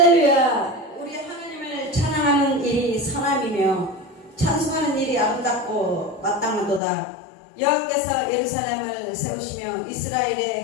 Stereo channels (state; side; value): drops out; right; at 6.8 s